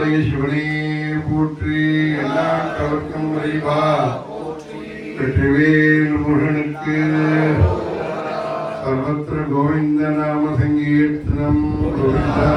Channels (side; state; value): both; identical; correlation 1.00